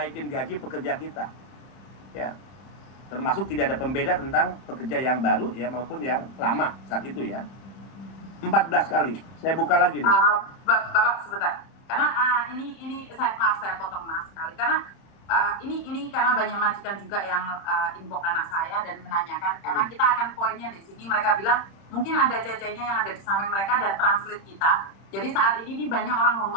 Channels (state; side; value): late; right; 31 ms